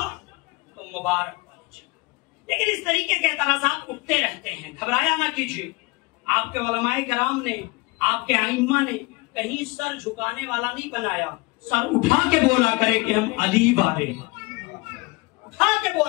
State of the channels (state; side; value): quieter; right; 24.5 dB